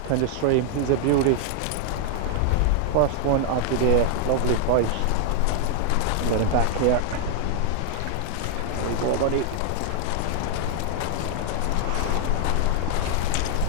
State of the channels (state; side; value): different; both; correlation 0.00